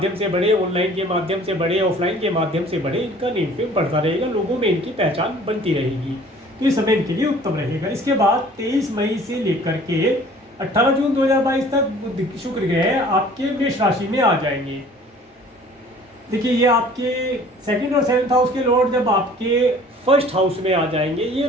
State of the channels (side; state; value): both; normal; correlation 0.50